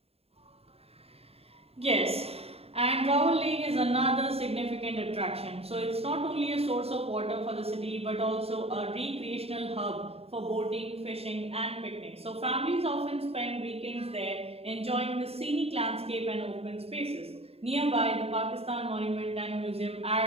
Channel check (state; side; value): late; left; 0.29 ms